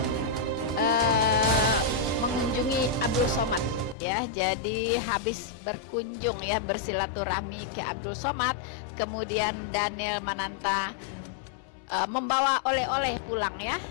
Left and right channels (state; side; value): drops out; right; at 4.0 s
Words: mengunjungi Abdul Somad ya. Jadi habis berkunjung ya, bersilaturahmi ke Abdul Somad, kemudian Daniel Mananta membawa oleh-oleh pulang ya.